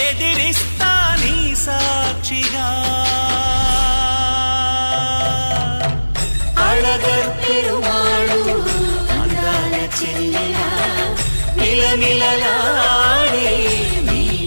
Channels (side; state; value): both; inverted; correlation -1.00